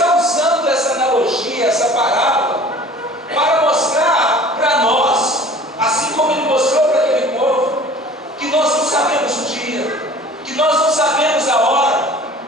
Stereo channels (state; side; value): normal; both; correlation 0.46